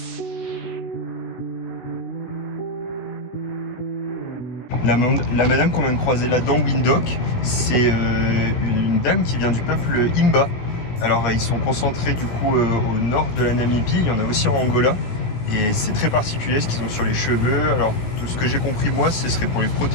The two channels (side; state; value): right; late; 16 ms